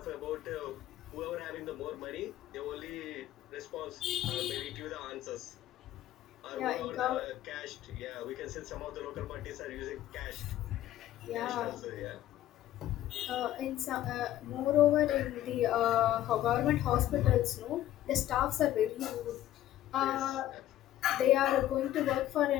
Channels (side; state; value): right; quieter; 13.3 dB